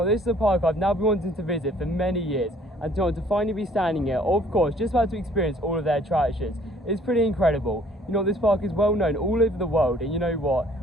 is a park I've now been wanting to visit for many years, and to finally be standing here, of course, just about to experience all of their attractions. It's pretty incredible. This park is well known all over the world, and you know what?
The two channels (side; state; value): both; normal; correlation 0.58